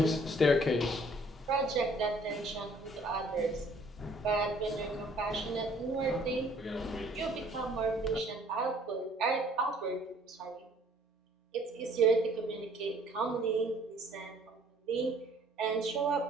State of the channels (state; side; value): normal; both; correlation 0.58